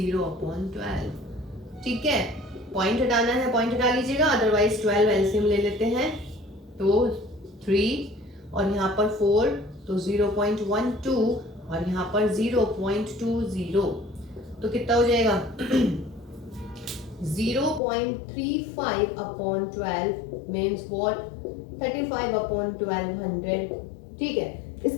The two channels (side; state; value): right; drops out; at 17.8 s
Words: ठीक है, पॉइंट हटाना है पॉइंट हटा लीजिएगा, अदरवाइज 12 एलसीएम ले लेते हैं तो 3 और यहाँ पर 4 तो 0.12 और यहाँ पर 0.20, तो कितना हो जाएगा 0.35/12 मीन्स व्हाट 35/1200। ठीक है,